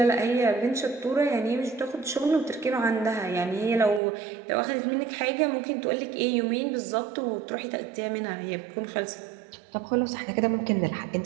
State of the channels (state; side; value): drops out; left; at 4.0 s